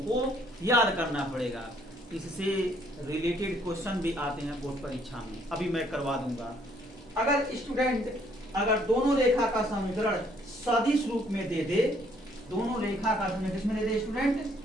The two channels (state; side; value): normal; both; correlation 0.65